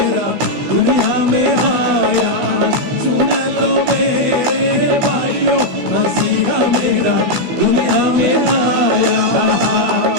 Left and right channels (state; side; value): late; left; 16 ms